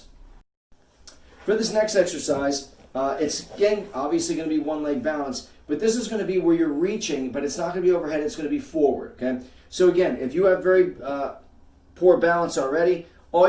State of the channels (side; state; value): both; identical; correlation 1.00